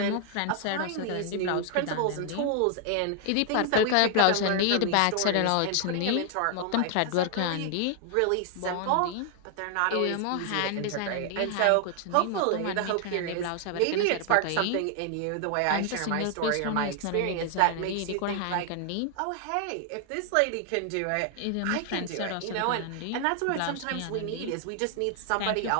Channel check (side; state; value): both; different; correlation 0.00